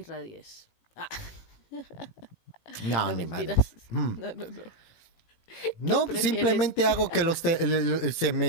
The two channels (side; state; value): right; late; 18 ms